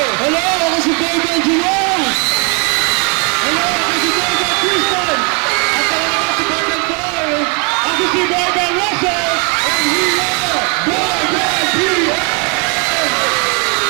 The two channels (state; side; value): quieter; left; 34.5 dB